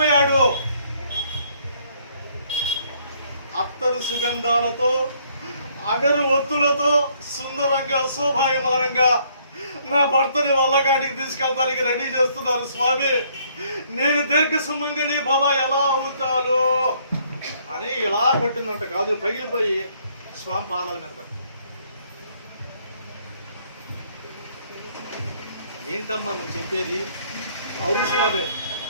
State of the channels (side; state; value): both; inverted; correlation -0.65